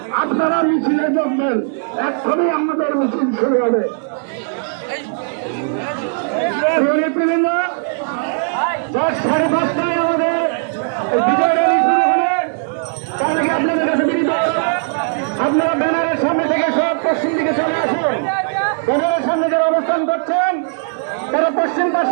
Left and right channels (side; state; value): left; silent; digital silence